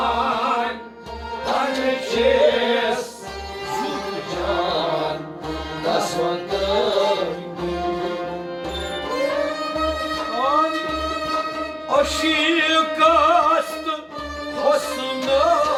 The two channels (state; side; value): identical; both; correlation 1.00